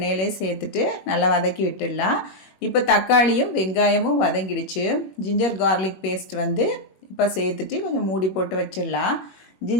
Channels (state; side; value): late; right; 21 ms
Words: சேர்த்துட்டு நல்லா வதக்கி விட்டுடலாம். இப்போ தக்காளியும் வெங்காயமும் வதங்கிடுச்சு. ஜிஞ்சர் கார்லிக் பேஸ்ட் இப்போ சேர்த்துட்டு கொஞ்சம் மூடி போட்டு வச்சிடலாம்.